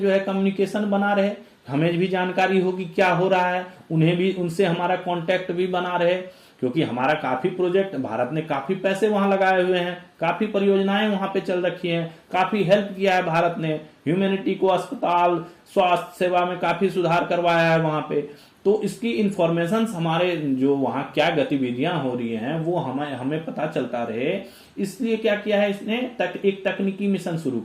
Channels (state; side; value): identical; both; correlation 1.00